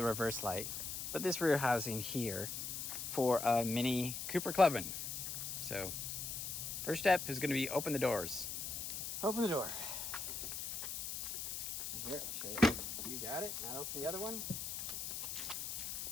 reverse light, but this rear housing here for a mini Cooper Clubman. So, first step is going to be open the doors. Open the door. Here, I'll show you. You got it. Now open the other one.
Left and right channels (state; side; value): noise; left; hiss, 4 dB below the sound